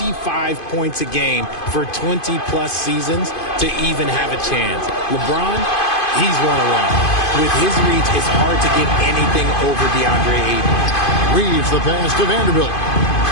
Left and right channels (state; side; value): late; right; 2.5 ms